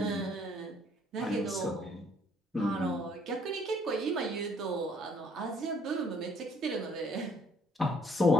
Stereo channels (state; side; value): normal; both; correlation 0.63